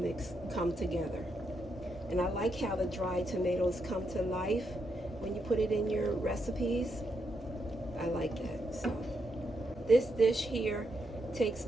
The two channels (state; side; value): normal; both; correlation 0.80